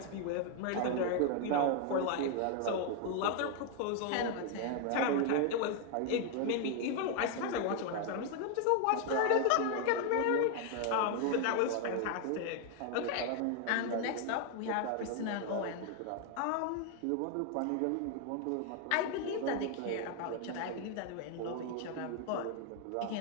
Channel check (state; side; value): different; both; correlation 0.01